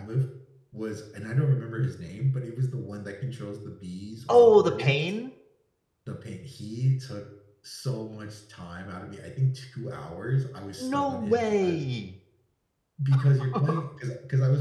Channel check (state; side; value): identical; both; correlation 1.00